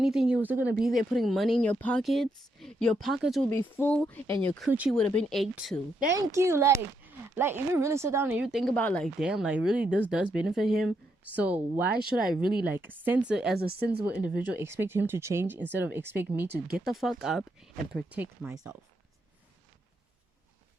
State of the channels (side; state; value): both; normal; correlation 0.79